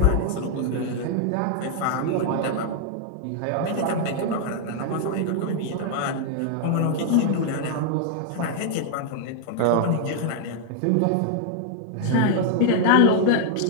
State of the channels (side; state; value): both; different; correlation -0.01